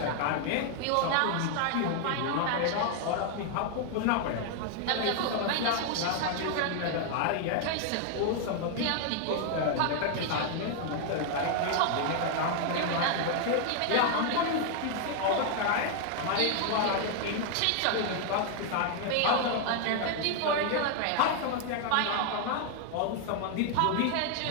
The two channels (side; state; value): both; different; correlation 0.00